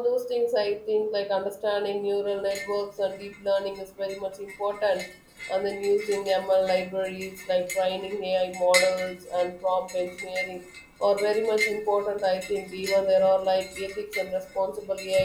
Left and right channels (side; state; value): both; identical; correlation 1.00